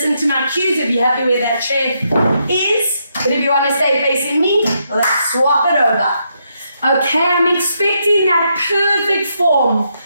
to my cues, if you're happy where that chair is. But if you want to stay facing me, let's swap it over. Okay, I'm expecting that perfect form.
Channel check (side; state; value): both; inverted; correlation -0.78